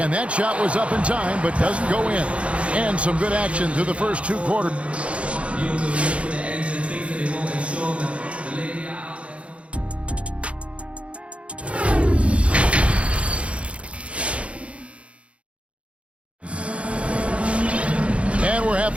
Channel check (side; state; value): left; late; 0.061 ms